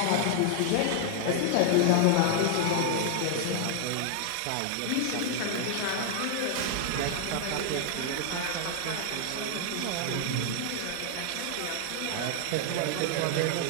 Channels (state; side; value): different; both; correlation 0.00